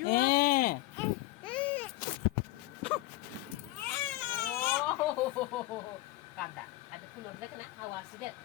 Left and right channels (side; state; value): right; quieter; 18.5 dB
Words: কান্দা আজ ফুল দেখ না হাওয়া আসি দেখ